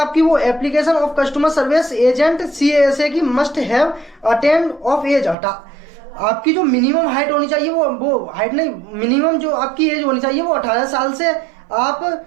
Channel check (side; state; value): left; drops out; at 5.4 s